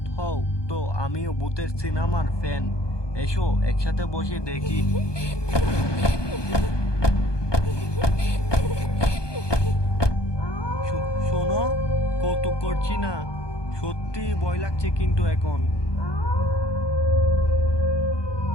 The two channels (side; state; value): right; late; 1.2 ms